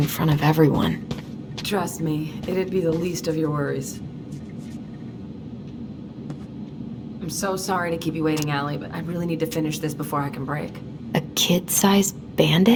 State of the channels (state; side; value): identical; both; correlation 1.00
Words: front of everyone. Trust me, it'd be the least of your worries. I'm so sorry to keep you waiting, Allie, but I really need to finish this before I can break. A kid-sized